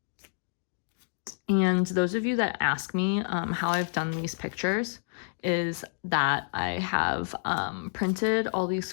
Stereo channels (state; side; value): silent; right; digital silence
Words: And those of you that ask me how I've done these pictures is that I have printed all these